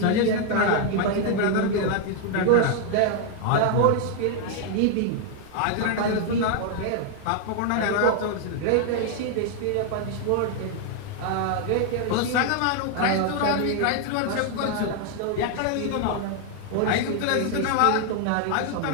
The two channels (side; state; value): both; different; correlation 0.00